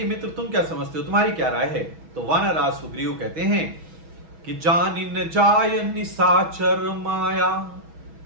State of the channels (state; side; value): late; left; 6.2 ms